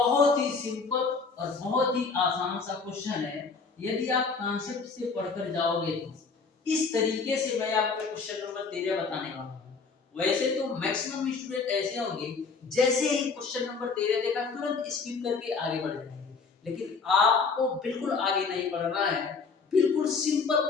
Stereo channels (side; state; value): right; quieter; 4.8 dB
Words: ही सिंपल और बहुत ही आसान सा क्वेश्चन है। यदि आप कॉन्सेप्ट से पढ़कर जाओगे तो इस तरीके से मैं आपको क्वेश्चन नंबर 13 बताने वाला हूं। वैसे तो मैक्सिमम स्टूडेंट ऐसे होंगे जैसे ही क्वेश्चन नंबर 13 देखा तुरंत स्किप करके आगे बढ़ जाएंगे, लेकिन आपको बिल्कुल आगे नहीं बढ़ना है। बिल्कुल सिंपल